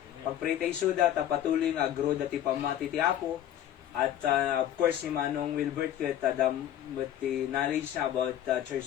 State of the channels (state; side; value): quieter; right; 11.3 dB